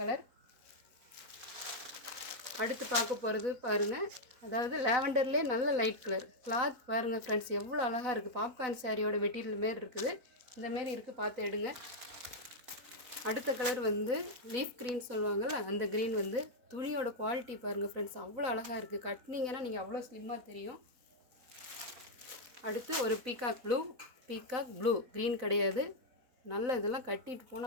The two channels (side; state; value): left; late; 4.0 ms